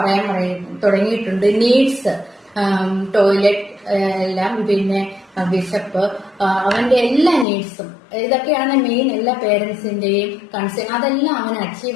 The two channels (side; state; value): right; drops out; at 7.5 s